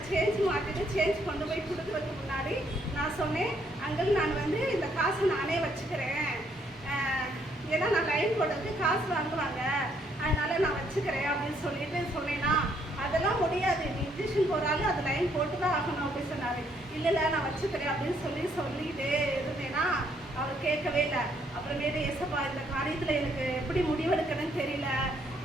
சேஞ்ச் மாற்றிட்டு சேஞ்ச் கொண்டு போய் கொடுக்குறதுக்கு முன்னாடி நான் சொன்னேன், அங்கிள் நான் வந்து இந்த காசை நானே வச்சுக்கிறேன், போடுறதுக்கு காசு வாங்குவாங்க, அதனால நான் வச்சுக்கிறேன் அப்படின்னு சொல்லிட்டு சொன்னேன்னா, அதெல்லாம் முடியாது, நீ இன்ஜெக்ஷன் போடுறாலும் அது லைன் போட்டு தான் ஆகணும் அப்படின்னு சொன்னார். இல்லை நான் வச்சுக்கிறேன் அப்படின்னு சொல்லிட்டு இருந்தேன்னா அவர் கேட்கவே இல்லை. அப்புறமேட்டு ஏசப்பா இந்த காரியத்தில் எனக்கு எப்படி முடிவெடுக்கணும்னு தெரியல,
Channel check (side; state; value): both; normal; correlation 0.70